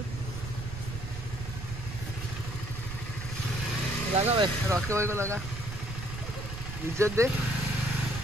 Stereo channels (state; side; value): noise; right; rumble, 8 dB below the sound